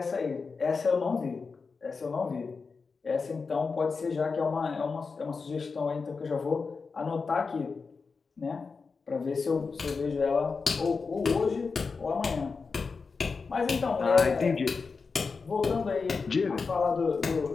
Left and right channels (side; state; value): right; quieter; 4.7 dB